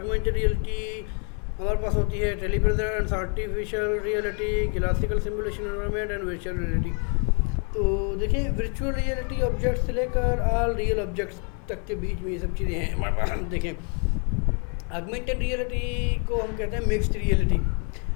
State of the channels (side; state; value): right; quieter; 39.2 dB